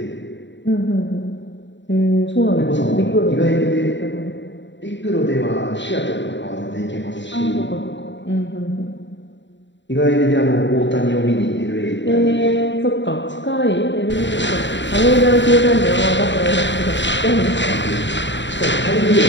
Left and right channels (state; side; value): late; right; 0.53 ms